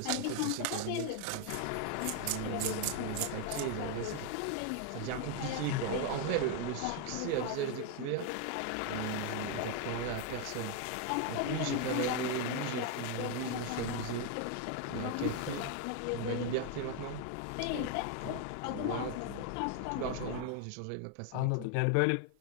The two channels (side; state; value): both; different; correlation 0.01